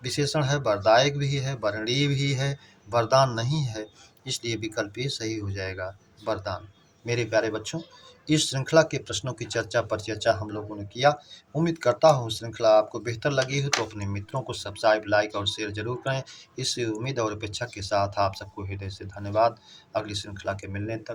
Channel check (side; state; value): both; identical; correlation 1.00